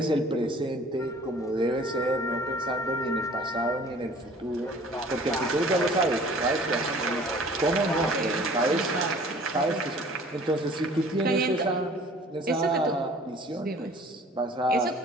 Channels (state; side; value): normal; both; correlation 0.50